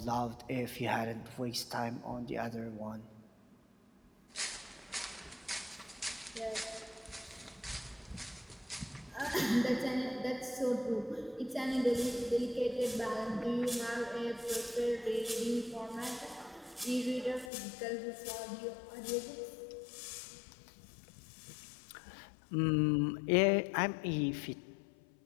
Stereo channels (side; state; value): right; drops out; at 17.5 s